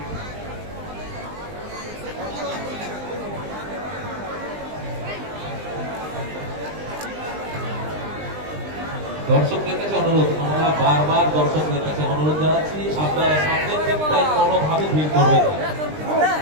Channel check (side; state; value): left; late; 20 ms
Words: দর্শকদের কাছে অনুরোধ, আমরা বারবার দর্শকদের কাছে অনুরোধ জানাচ্ছি, আপনারা সামনের দিকটায় কোনোভাবে ভিড় করবেন না।